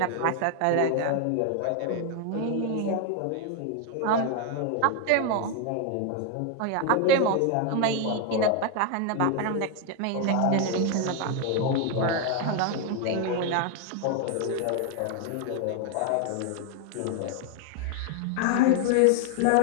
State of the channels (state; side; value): different; both; correlation 0.01